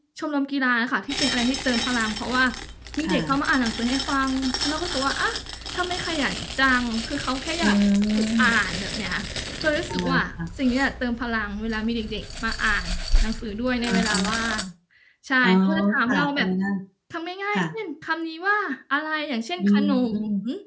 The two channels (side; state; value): both; identical; correlation 1.00